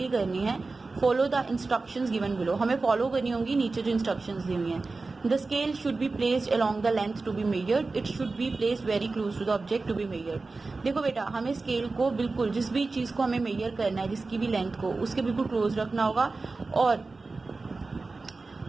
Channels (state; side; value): quieter; left; 3.7 dB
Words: करनी है, follow the instructions given below, हमें फॉलो करनी होंगी नीचे जो इंस्ट्रक्शंस दी हुई हैं। The scale should be placed along the length to be measured, it should be placed very close to the object to be measured. देखो बेटा, हमें स्केल को बिल्कुल, जिस भी चीज़ को हमें मेजर करना है, जिसकी भी लेंथ को, उसके बिल्कुल क्लोज रखना होगा और